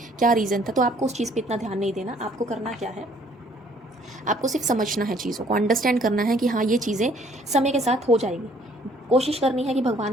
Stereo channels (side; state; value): both; normal; correlation 0.60